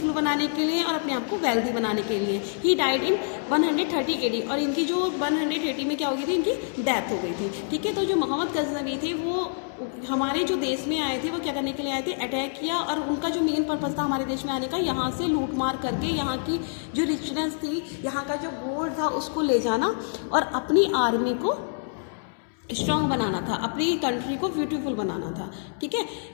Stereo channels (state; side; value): silent; right; 61 dB below the other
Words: बनाने के लिए और अपने आप को वेल्दी बनाने के लिए. He died in 130 AD. और इनकी जो 180 में क्या हो गई थी, इनकी डेथ हो गई थी. ठीक है, तो जो मोहम्मद गजनवी थे वो हमारे जो देश में आए थे, वो क्या करने के लिए आए थे, अटैक किया, और उनका जो मेन पर्पज़ था हमारे देश में आने का, यहाँ से लूट मार करके यहाँ की जो रिचनेस थी, यहाँ का जो गोल्ड था उसको ले जाना और अपनी आर्मी को स्ट्रॉन्ग बनाना था, अपनी कंट्री को ब्यूटीफुल बनाना था. ठीक है,